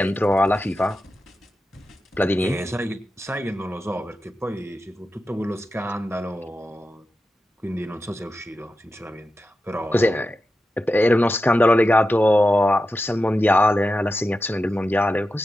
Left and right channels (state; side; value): normal; both; correlation 0.91